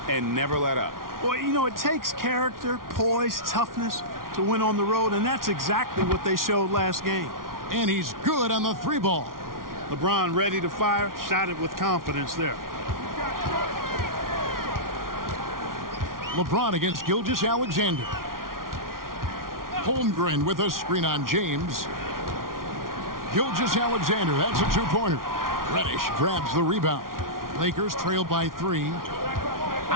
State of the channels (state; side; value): late; left; 0.92 ms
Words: and never let up. Well, you know, it takes character, poise, toughness to win on the road, and that's exactly what they showed last game. And he's good on the three ball. LeBron ready to fire, shot it with confidence there. LeBron against Gilgeous-Alexander. Holmgren with a screen on James. Gilgeous-Alexander, that's a two-pointer. Reddish grabs the rebound. Lakers trail by 3.